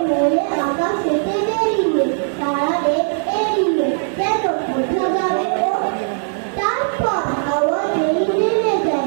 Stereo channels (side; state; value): left; silent; 67 dB below the other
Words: মনে আকাশেতে বেরিয়ে, তারা দেখ এড়িয়ে কেন কোথা যাবে ও। তারপর হাওয়া যেই নেমে